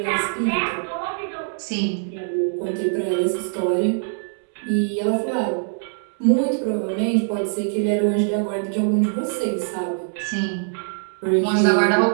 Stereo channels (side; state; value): left; silent; 64 dB below the other